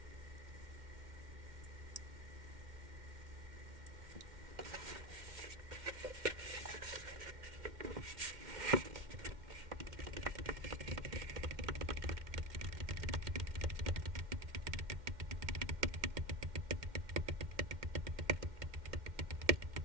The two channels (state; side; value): late; left; 2.1 ms